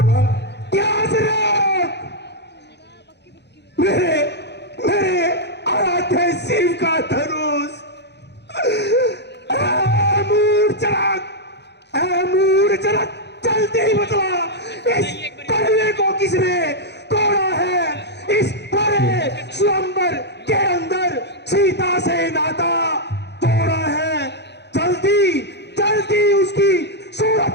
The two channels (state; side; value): late; right; 0.50 ms